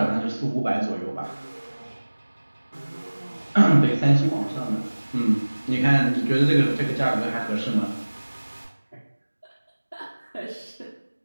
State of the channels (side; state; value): both; inverted; correlation -1.00